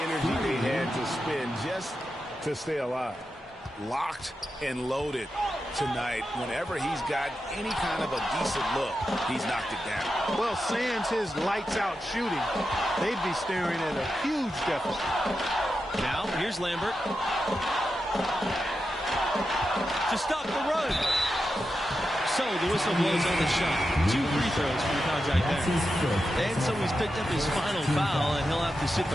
energy they had to spend just to stay alive. Locked and loaded tonight. Whenever he's got any kind of a decent look, he's knocked it down. Well, sans his lights-out shooting, they'd be staring at a huge deficit. Now, here's Lambert. To stop the run. So the whistle blows on the shot. 2 free throws for the contact there. And so he's picked up his final foul, and he'll have to sit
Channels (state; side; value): normal; both; correlation 0.89